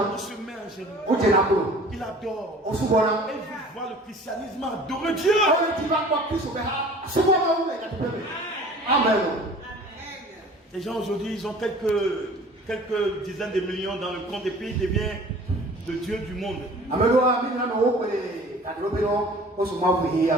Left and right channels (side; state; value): both; normal; correlation 0.46